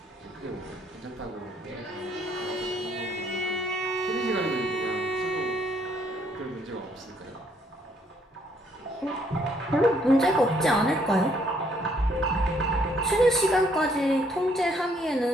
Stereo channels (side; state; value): both; normal; correlation 0.68